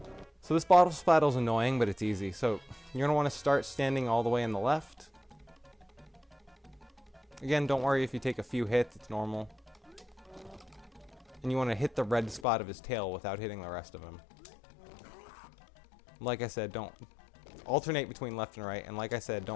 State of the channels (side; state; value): right; drops out; at 12.5 s